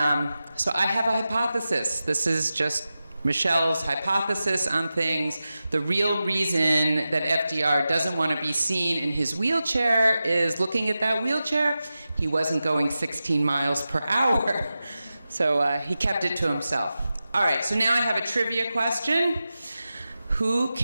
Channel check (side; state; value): both; inverted; correlation -0.93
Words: so I have a hypothesis. This is just Michelle's hypothesis on things. The real reason that FDR doesn't want to be seen in his wheelchair is, looking at that wheelchair, he wasn't going 16 miles per hour. So he kept it to himself. All right, so now I have a trivia question. Who